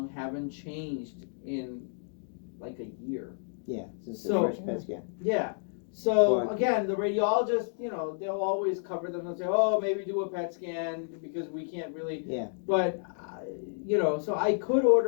haven't changed in like a year. Yeah, since the first PET scan. Yeah. So again, the radiologist, they'll always cover them and say, "Oh, maybe do a PET scan because we can't really." Yeah. But so I could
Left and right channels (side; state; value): right; silent; digital silence